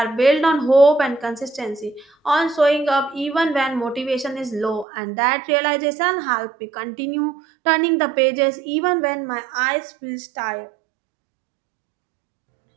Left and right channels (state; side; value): drops out; left; at 4.9 s